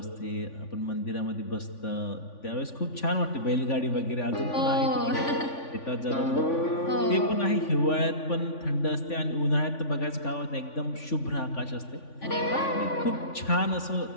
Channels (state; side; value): late; right; 3.5 ms